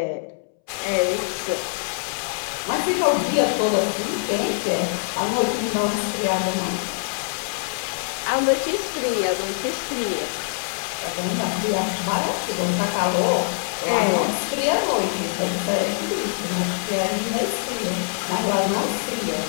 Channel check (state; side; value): silent; right; 63 dB below the other